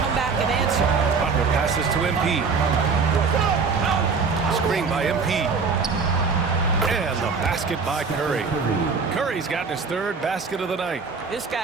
back and answer. Butler passes to MP. Screen by MP. And the basket by Curry. Curry's gotten his 3rd basket of the night. This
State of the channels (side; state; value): left; quieter; 5.0 dB